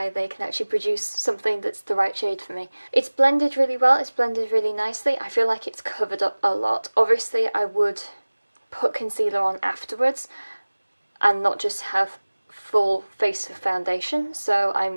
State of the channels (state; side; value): inverted; both; correlation -1.00